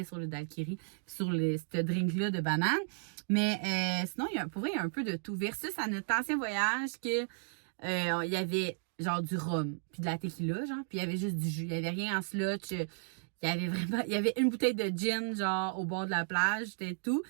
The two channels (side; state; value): left; silent; digital silence